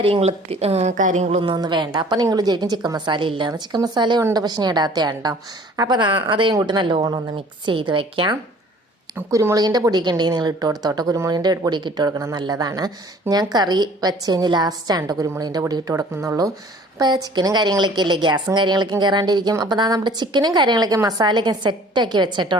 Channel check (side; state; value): both; normal; correlation 0.51